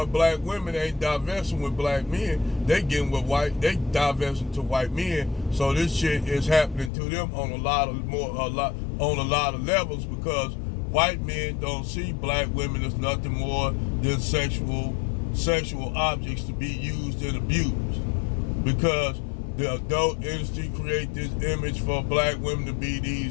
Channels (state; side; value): drops out; right; at 6.9 s